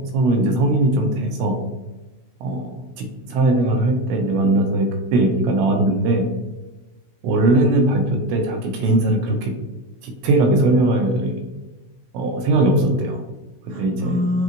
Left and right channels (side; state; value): left; late; 16 ms